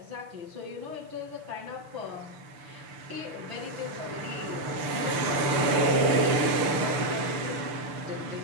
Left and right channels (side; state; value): left; late; 6.8 ms